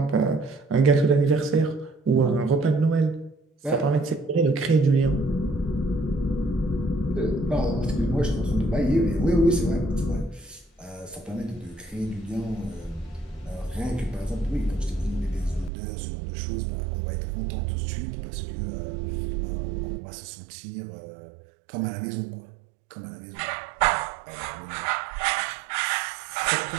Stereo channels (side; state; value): left; drops out; at 15.7 s